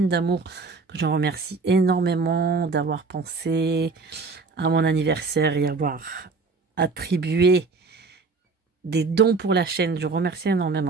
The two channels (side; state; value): left; quieter; 4.2 dB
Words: d'amour, que je remercie énormément d'avoir pensé à mon anniversaire et avoir attribué des dons pour la chaîne. Je remercie